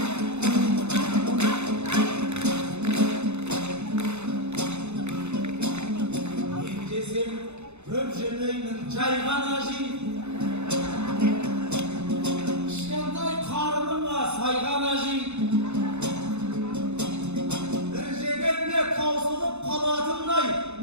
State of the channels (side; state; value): left; late; 0.81 ms